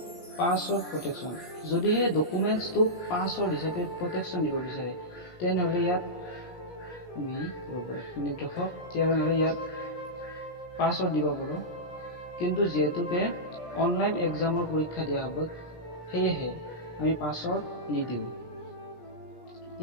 পাছৱৰ্ড প্ৰটেকশ্যন। যদিহে ডকুমেণ্টছটো পাছৱৰ্ড হিচাপে প্ৰটেকশ্যন দিব বিচাৰে তেনেহ'লে ইয়াত পাছৱৰ্ড দিব পাৰোঁ। কিন্তু যিহেতুকে অনলাইন এক্সামৰ পৰীক্ষা দিয়া হ'ব সেয়েহে আমি পাছৱৰ্ড নিদিওঁ।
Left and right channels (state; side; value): late; right; 17 ms